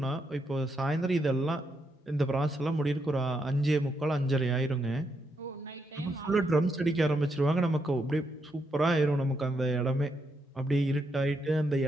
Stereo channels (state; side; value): normal; both; correlation 0.80